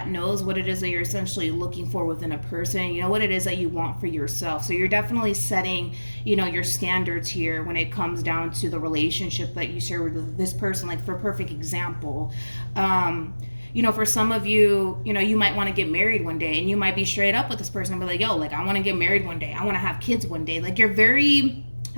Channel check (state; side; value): inverted; both; correlation -1.00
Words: knows what it is that you're essentially looking for within a person. You know what it is that you want for yourself. So you're definitely setting, your standards here when it comes down to the relationship that you share with this person. Like, for a perfect example, for some of you, you might want to get married one day, and you might be straight up with this person and be like, yo, like, I want to get married one day. I want to have kids one day. Like, you're very